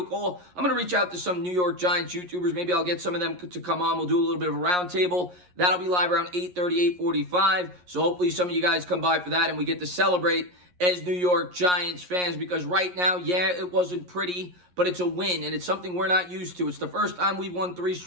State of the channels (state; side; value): late; left; 11 ms